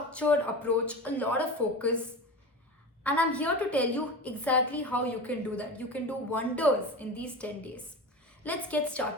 approach, a lot of focus, and I'm here to tell you exactly how you can do that. You can do wonders in these 10 days. Let's get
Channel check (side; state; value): both; normal; correlation 0.28